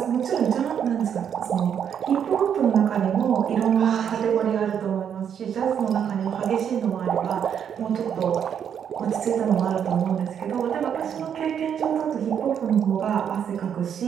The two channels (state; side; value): quieter; left; 8.3 dB